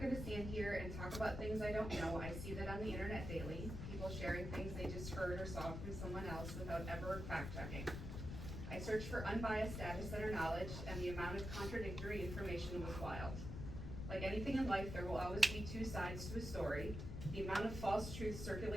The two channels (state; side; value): noise; left; rumble, 5 dB below the sound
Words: gonna stand here and talk about things I don't know. I see that on the internet daily, people sharing things they just heard or saw from someone else without ever fact checking. I searched for unbiased data center knowledge, and the amount of contradictory information was wild. Like anything in life, there will always be two sides to a story. The amount of false truth